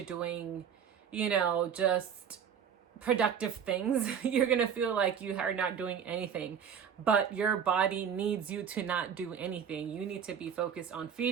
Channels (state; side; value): quieter; left; 7.7 dB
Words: doing, you know, just productive things, you're going to feel like you are not doing anything, but your body needs you to not do anything. You need to be focused on